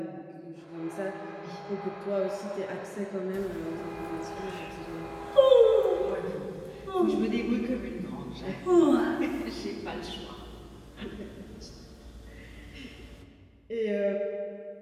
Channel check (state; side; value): identical; both; correlation 1.00